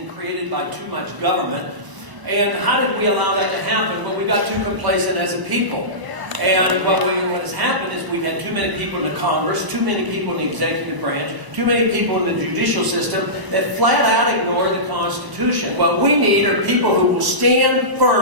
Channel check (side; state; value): left; late; 1.0 ms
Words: created by too much government. And how did we allow that to happen? Well, we got too complacent as a people. And what has happened is we've had too many people in the Congress, too many people in the executive branch, too many people in the judicial system that flat out ignore the Constitution. What we need are people who will stand